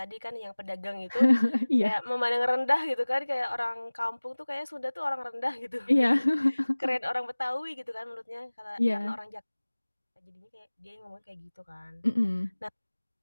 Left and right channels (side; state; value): both; inverted; correlation -1.00